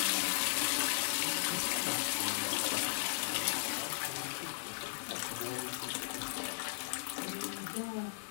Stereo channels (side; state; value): right; silent; 53 dB below the other